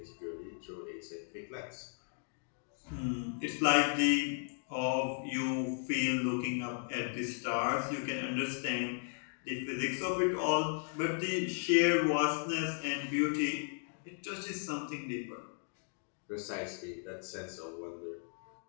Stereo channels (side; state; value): right; silent; 54 dB below the other